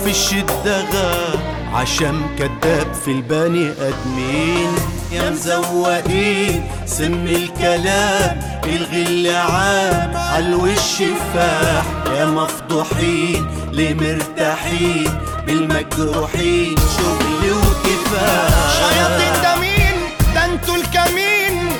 في الشدة غاب عشان كداب في البني ادمين. يا مزوقين سم الكلام، الغل عام عالوش فاح. يا مفضوحين ليه مرتاحين بالمجروحين، شغل وكفاح. شياطين ده مين؟ ده انتوا الكمين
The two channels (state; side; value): identical; both; correlation 1.00